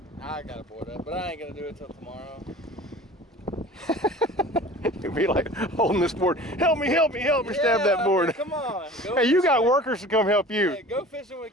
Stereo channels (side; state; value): both; normal; correlation 0.42